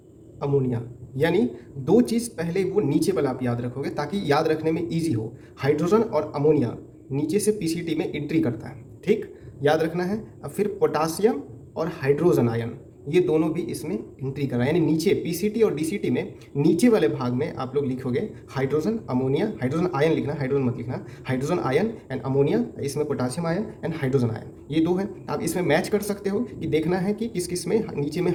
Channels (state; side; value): identical; both; correlation 1.00